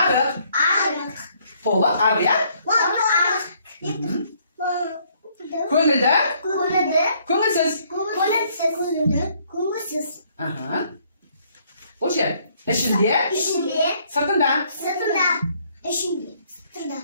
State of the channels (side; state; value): both; inverted; correlation -0.66